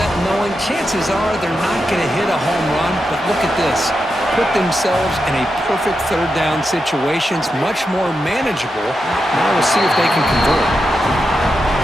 knowing chances are they're not going to hit a home run. But look at this. Put themselves in a perfect third down situation. It's much more manageable. Now we'll see if they can convert.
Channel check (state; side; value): normal; both; correlation 0.87